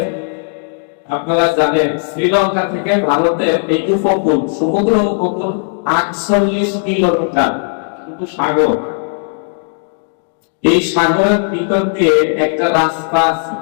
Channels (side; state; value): right; silent; 69 dB below the other